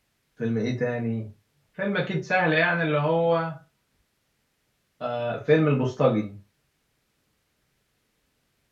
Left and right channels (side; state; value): both; identical; correlation 1.00